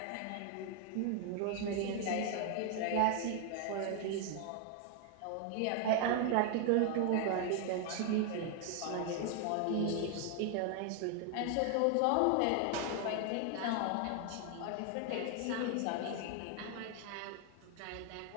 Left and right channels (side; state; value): both; different; correlation 0.00